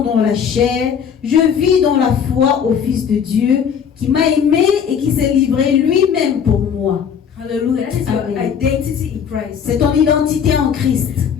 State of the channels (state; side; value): quieter; right; 7.5 dB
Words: dans la chair, je vis dans la foi au Fils de Dieu qui m'a aimé et qui s'est livré lui-même pour moi. Hallelujah. That is your Amen. identity in Christ. C'est ton identité en Christ.